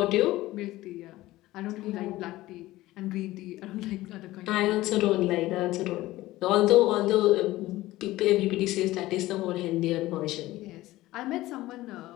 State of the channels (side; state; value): right; quieter; 17.2 dB